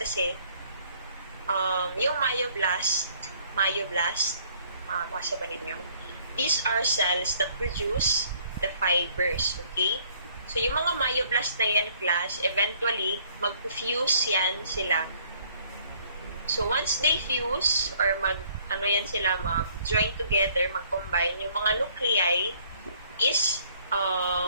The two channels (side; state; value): both; inverted; correlation -0.61